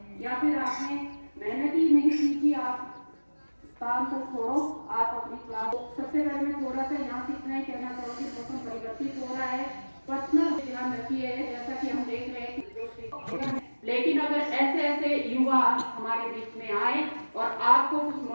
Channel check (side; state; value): both; inverted; correlation -1.00